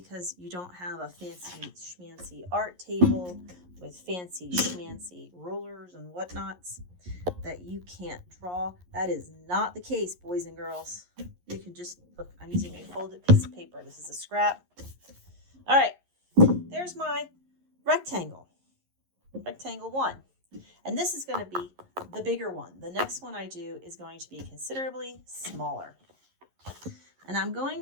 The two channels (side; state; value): left; late; 11 ms